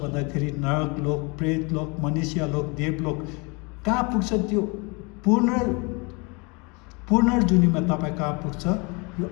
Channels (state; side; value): quieter; right; 29.7 dB